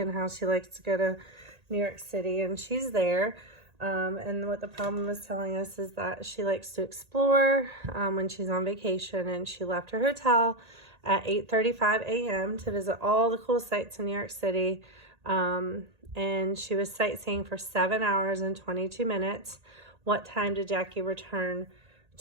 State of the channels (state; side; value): late; left; 1.8 ms